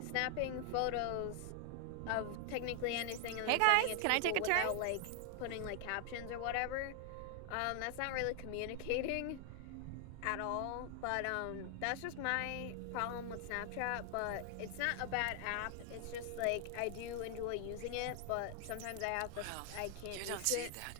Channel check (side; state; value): both; different; correlation 0.00